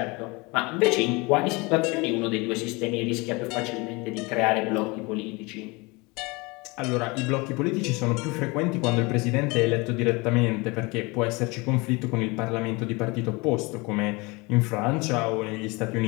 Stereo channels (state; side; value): quieter; right; 25.8 dB